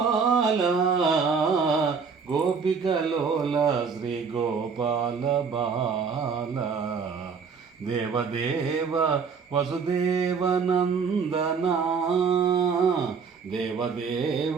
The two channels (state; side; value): quieter; left; 5.7 dB